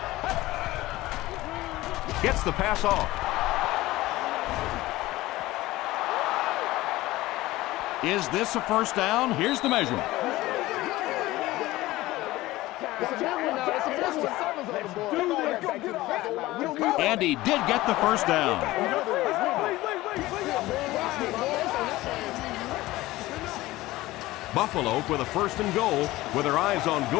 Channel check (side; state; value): right; quieter; 18.0 dB